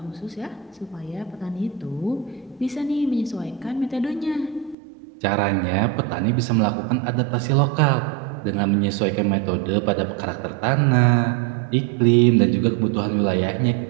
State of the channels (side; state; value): left; drops out; at 4.8 s